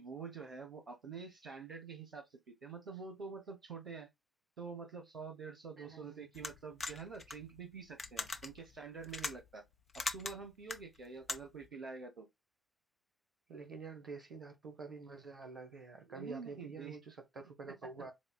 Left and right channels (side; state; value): both; normal; correlation 0.57